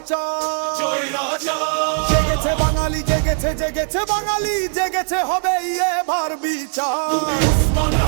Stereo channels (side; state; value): left; silent; 60 dB below the other